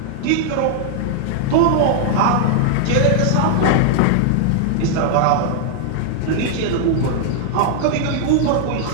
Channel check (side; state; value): both; different; correlation 0.00